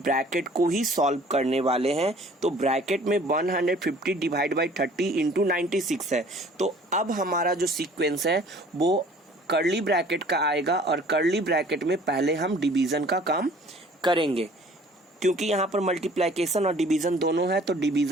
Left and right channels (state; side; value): normal; both; correlation 0.52